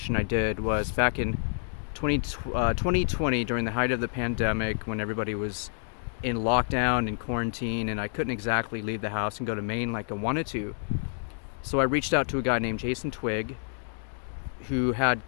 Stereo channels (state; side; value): silent; right; digital silence